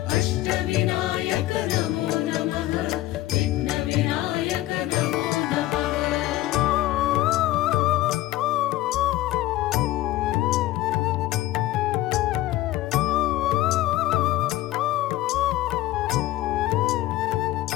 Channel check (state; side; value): quieter; right; 16.1 dB